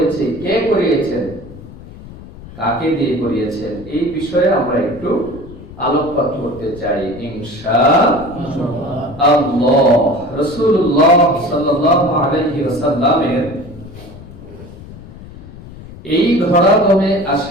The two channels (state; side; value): noise; left; rumble, 16 dB below the sound